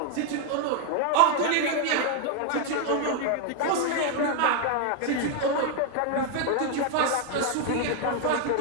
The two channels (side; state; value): both; different; correlation 0.01